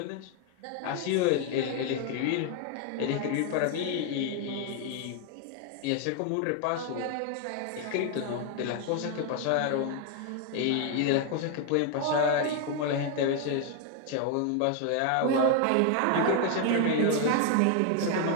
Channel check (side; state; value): both; different; correlation 0.00